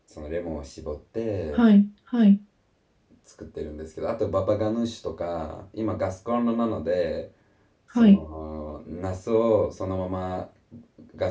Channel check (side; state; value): both; identical; correlation 1.00